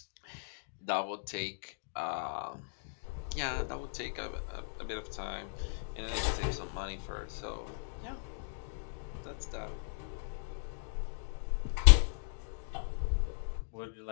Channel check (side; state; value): right; silent; digital silence